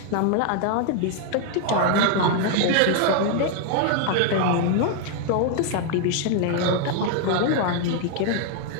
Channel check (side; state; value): both; different; correlation 0.00